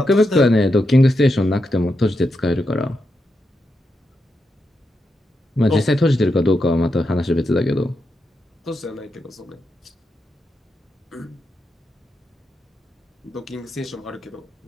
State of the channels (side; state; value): both; normal; correlation 0.85